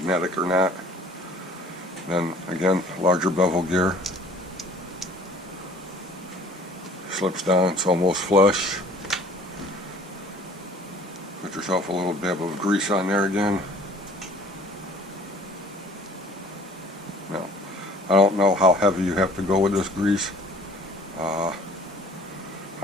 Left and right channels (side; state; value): both; normal; correlation 0.52